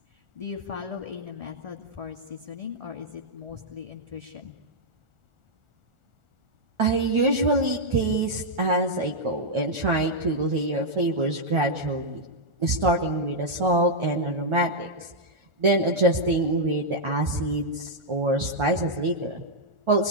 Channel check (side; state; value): left; late; 1.4 ms